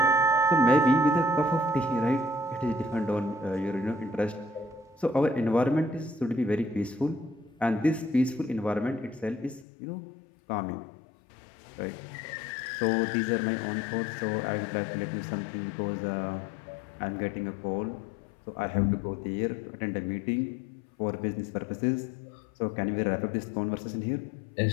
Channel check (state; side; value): drops out; right; at 9.7 s